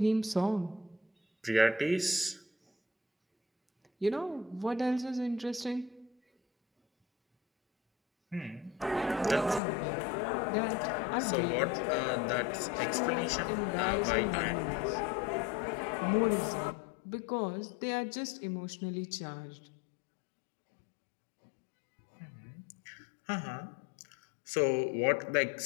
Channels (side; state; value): right; drops out; at 9.6 s